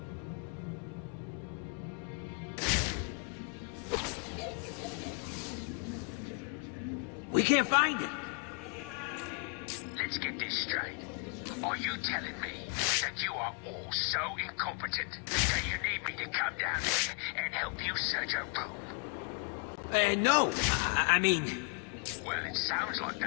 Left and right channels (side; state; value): right; quieter; 37.5 dB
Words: We can't find it. It's not here. Let's get this straight. Are you telling me that you are all so incompetent that you need me to come down there and help you search a room? No. I mean... Well, it sounds like